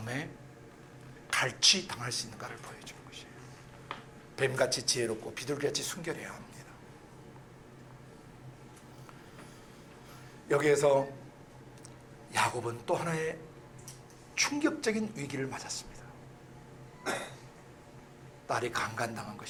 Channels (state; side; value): identical; both; correlation 1.00